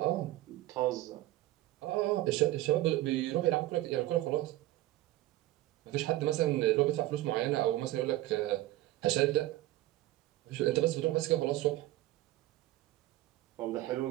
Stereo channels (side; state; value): left; quieter; 16.3 dB